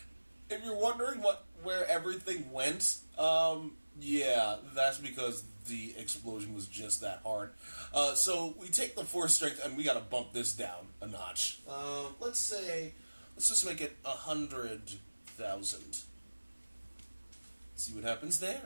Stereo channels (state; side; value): inverted; both; correlation -1.00